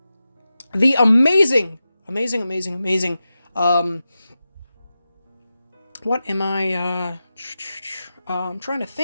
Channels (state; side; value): inverted; both; correlation -0.92